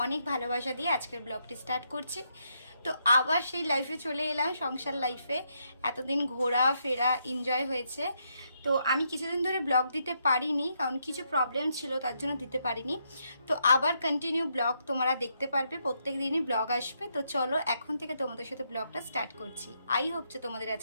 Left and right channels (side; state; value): both; inverted; correlation -0.78